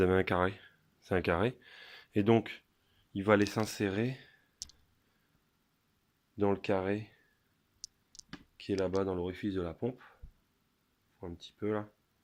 avez un carré. C'est un carré. Et donc, il va aller s'insérer dans le carré qui est là-bas dans l'orifice de la pompe. Un petit peu là.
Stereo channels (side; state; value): both; identical; correlation 1.00